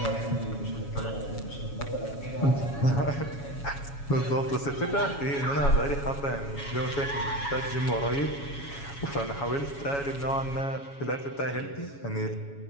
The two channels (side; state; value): right; late; 7.2 ms